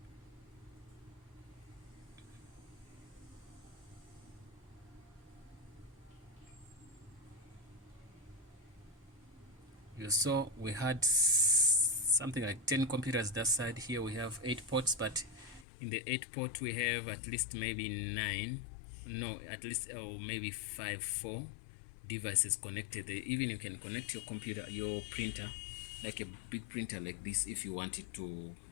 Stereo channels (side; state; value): right; drops out; at 15.7 s